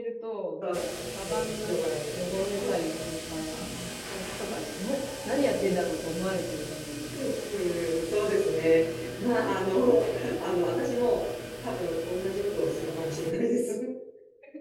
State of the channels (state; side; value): identical; both; correlation 1.00